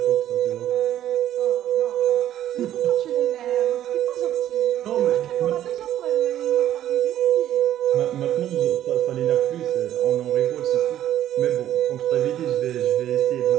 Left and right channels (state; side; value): quieter; left; 12.0 dB